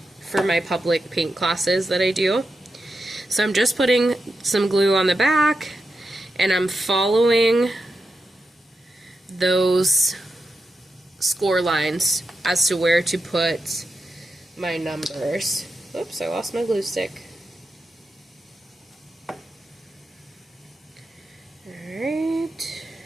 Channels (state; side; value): normal; both; correlation 0.88